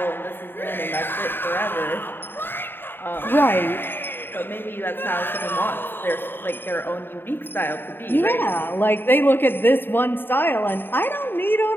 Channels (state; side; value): late; right; 0.098 ms